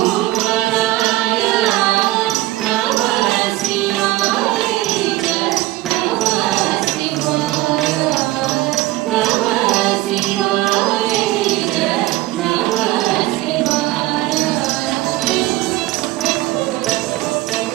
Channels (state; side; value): quieter; left; 17.7 dB